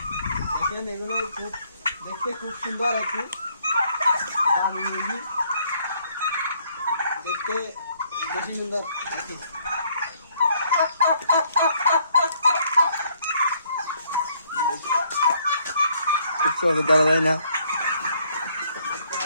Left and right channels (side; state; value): both; inverted; correlation -0.66